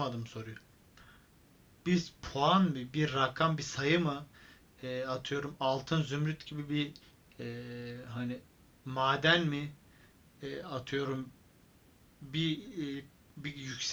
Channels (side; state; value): both; identical; correlation 1.00